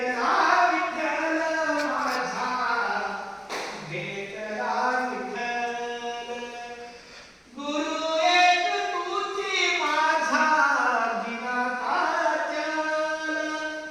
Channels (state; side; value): identical; both; correlation 1.00